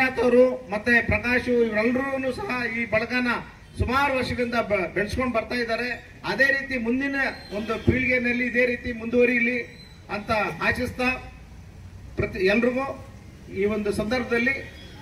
ಅವರು ಮತ್ತೆ ಪ್ರಕಾಶ್ ಇವರೆಲ್ಲರೂ ಸಹ ಈ ಬಳಗನ ಸುಮಾರು ವರ್ಷಗಳಿಂದ ಬೆಳೆಸ್ಕೊಂಡು ಬರ್ತಾ ಇದ್ದಾರೆ. ಅದೇ ರೀತಿ ಮುಂದಿನ ಒಂದು ಪೀಳಿಗೆಯಲ್ಲಿ ಇದೇ ರೀತಿ ಮುಂದುವರಿಯಲಿ ಅಂತ ಆಶಿಸ್ತಾ ಎಲ್ರಿಗೂ ಈ ಒಂದು ಸಂದರ್ಭದಲ್ಲಿ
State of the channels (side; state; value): both; identical; correlation 1.00